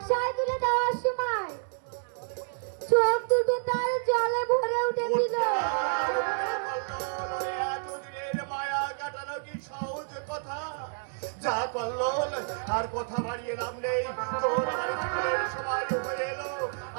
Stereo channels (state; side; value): silent; left; digital silence